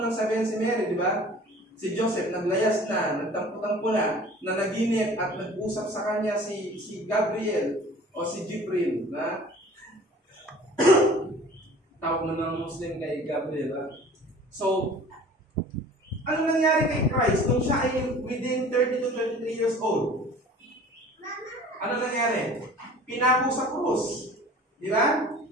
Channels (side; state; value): both; normal; correlation 0.46